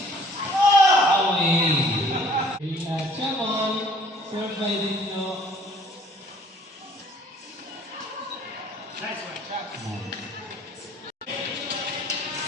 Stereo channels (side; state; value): both; normal; correlation 0.56